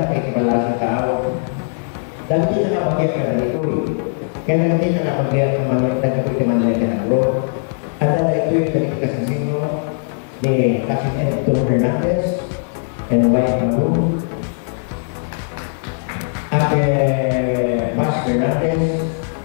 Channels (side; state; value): right; silent; digital silence